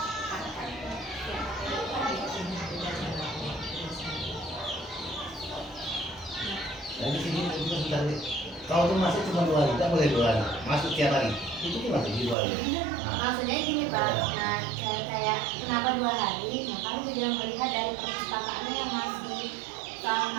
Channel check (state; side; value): drops out; left; at 12.4 s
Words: Dari sini juga sudah kalau tuh masuk cuma 2 hari, tidak boleh 2 hari, masuk tiap hari. Itu gimana sih 2 hari? Nah, Maksudnya gini Pak, nah kayak kenapa 2 hari? Nah kami juga melihat dari perpustakaannya yang masih